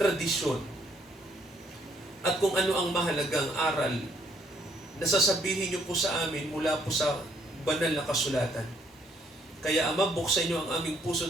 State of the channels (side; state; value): both; normal; correlation 0.67